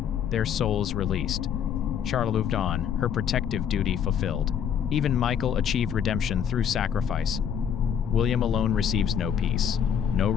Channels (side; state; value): right; quieter; 8.3 dB